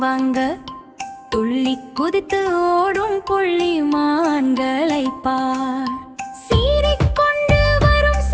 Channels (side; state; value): both; identical; correlation 1.00